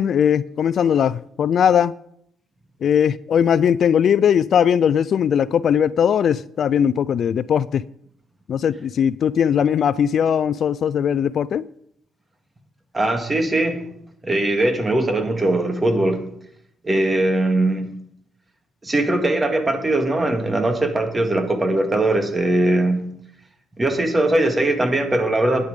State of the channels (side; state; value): right; quieter; 3.1 dB